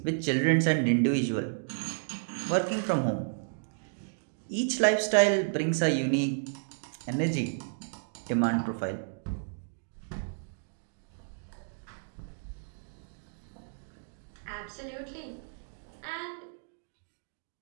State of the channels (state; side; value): silent; left; digital silence